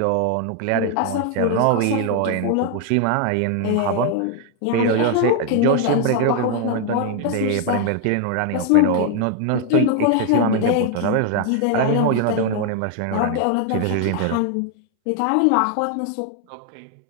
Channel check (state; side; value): different; both; correlation 0.00